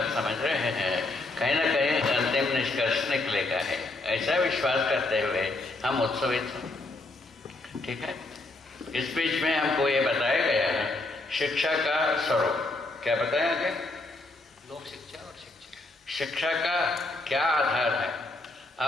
समझ रहे हैं, कहीं ना कहीं अंतिम निष्कर्ष निकलेगा है, ऐसा विश्वास करते हुए हम उत्सवित हैं। ठीक है। इस बीच में हमको ये बताया गया है शिक्षा का स्वरूप। क्या बताया गया? लोक शिक्षा और शिक्षा का क्या आधार है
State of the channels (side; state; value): right; quieter; 3.0 dB